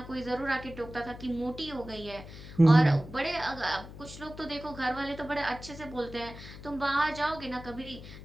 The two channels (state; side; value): noise; left; hum, 14 dB below the sound